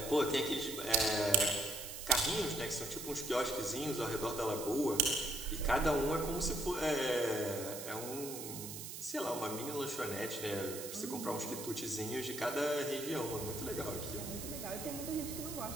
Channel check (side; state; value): right; noise; hiss, 8 dB below the sound